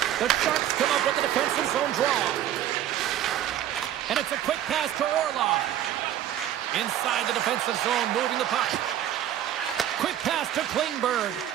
The Sharks come up with the defensive zone draw. And it's a quick pass to Orlov. Inside the defensive zone, moving the puck. Quick pass to Klingberg.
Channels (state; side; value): quieter; left; 11.5 dB